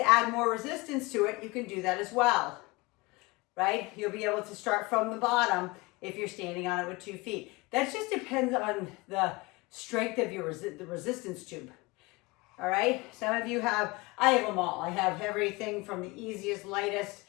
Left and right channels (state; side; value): quieter; right; 23.9 dB